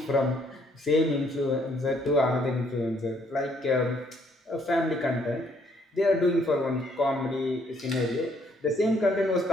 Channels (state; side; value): normal; both; correlation 0.67